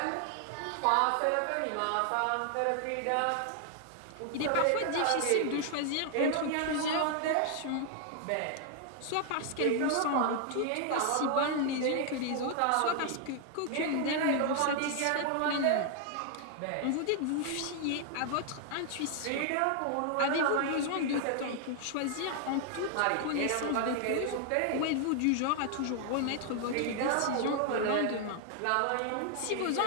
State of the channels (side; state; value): both; different; correlation 0.00